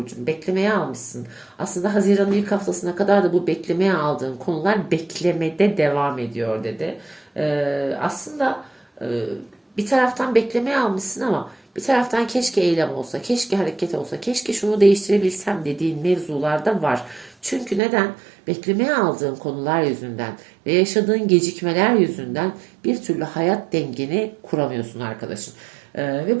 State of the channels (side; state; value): left; drops out; at 17.8 s